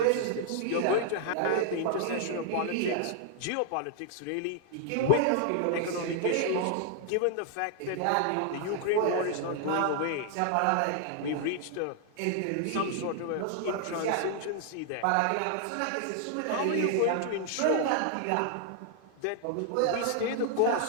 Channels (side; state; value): both; different; correlation 0.00